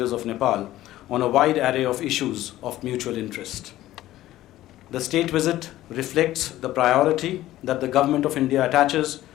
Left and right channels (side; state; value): right; quieter; 14.9 dB